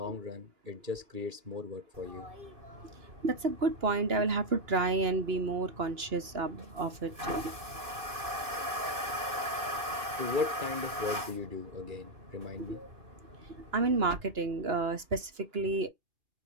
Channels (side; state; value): left; late; 2.6 ms